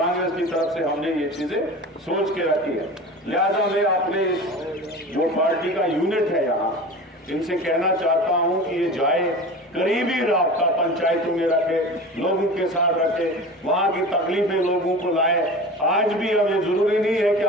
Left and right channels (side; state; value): both; normal; correlation 0.34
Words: की तरफ से हमने ये चीजें सोच के रखी है। लिहाजा मैं अपने जो पार्टी का यूनिट है यहाँ, इनसे कहना चाहता हूं कि ये जाए, करीबी राब्ता पंचायतों में रखे, लोगों के साथ रखे, वहां की तकलीफें लोगों को लाए। आज भी हमें जरूरी नहीं है कि